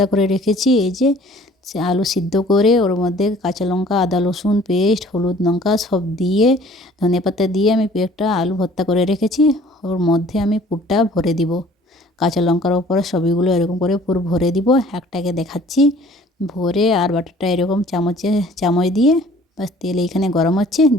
করে রেখেছি। এই যে সে আলু সিদ্ধ করে ওর মধ্যে কাঁচা লঙ্কা, আদা রসুন পেস্ট, হলুদ লঙ্কা সব দিয়ে, ধনেপাতা দিয়ে আমি একটা আলু ভর্তা করে রেখেছি। ওর মধ্যে আমি পুরটা ভরে দিব। কাঁচা লঙ্কার ওপরে সবইগুলো এরকম করে পুরো ভরে দিব। একটাকে দেখাচ্ছি ভরে, আর বাটারটা এরকম চামচ দিয়ে, বাস তেল এইখানে গরম হচ্ছে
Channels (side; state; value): both; normal; correlation 0.53